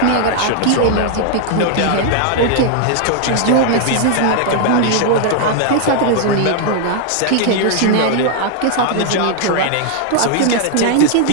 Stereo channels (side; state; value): both; different; correlation 0.00